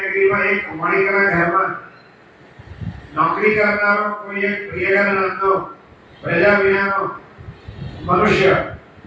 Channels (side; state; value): both; identical; correlation 1.00